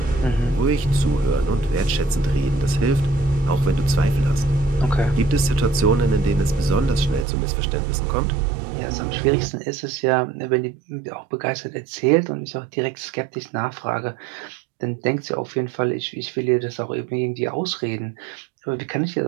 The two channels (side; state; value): left; drops out; at 7.2 s